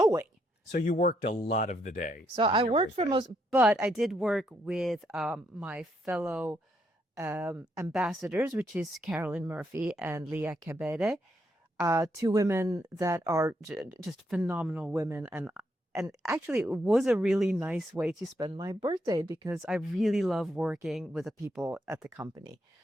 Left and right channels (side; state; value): both; normal; correlation 0.77